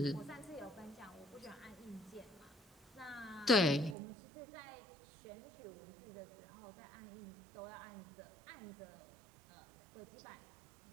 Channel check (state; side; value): drops out; left; at 4.0 s